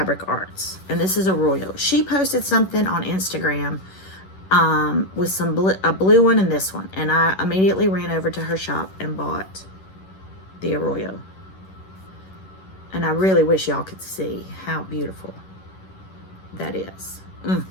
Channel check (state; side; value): late; right; 11 ms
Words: Arts, and this is a Royal. She posted something on Instagram with a blue one and this one, and I immediately ran over to her shop and bought the Arroyo. And I really wish y'all could see how beautiful that is.